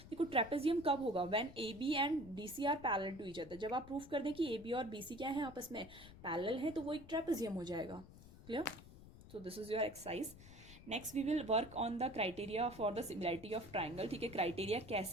देखो ट्रेपेजियम कब होगा, when A B and D C are parallel to each other. जब आप प्रूफ कर दें कि ए बी और बी सी क्या है, आपस में पैरेलल है, तो वो एक ट्रेपेजियम हो जाएगा। Clear? So this is your exercise. Next we will work on the criteria for the similarity of triangle. ठीक है, क्राइटेरिया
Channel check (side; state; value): left; noise; rumble, 17 dB below the sound